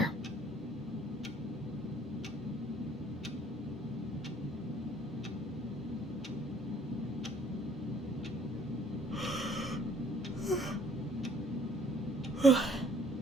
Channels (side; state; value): both; normal; correlation 0.59